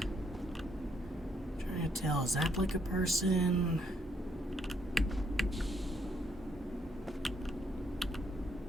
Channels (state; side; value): normal; both; correlation 0.72